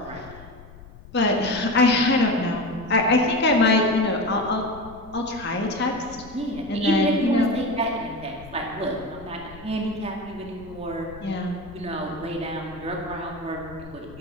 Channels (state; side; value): noise; left; rumble, 19 dB below the sound